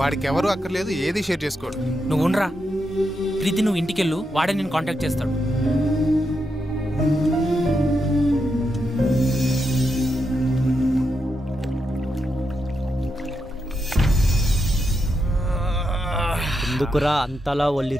ఎవరు అక్కర్లేదు, ఏది షేర్ చేసుకోడు. నువ్వు ఉండరా ప్రీతి, నువ్వు ఇంటికెళ్ళు, వాడే నేను కాంటాక్ట్ చేస్తాడు. ఎందుకురా అంతలా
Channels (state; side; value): normal; both; correlation 0.84